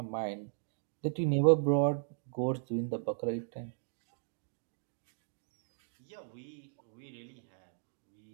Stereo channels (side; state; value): left; silent; digital silence